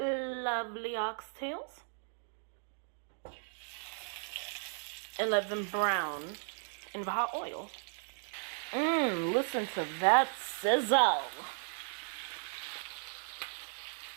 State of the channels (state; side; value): silent; left; 54 dB below the other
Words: oxtails and let them brown in the hot oil. Listen to that sizzle.